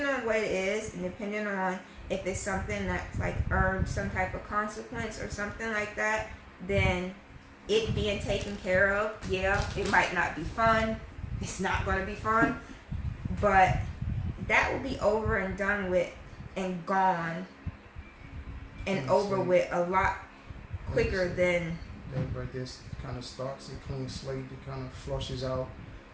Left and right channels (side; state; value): both; identical; correlation 1.00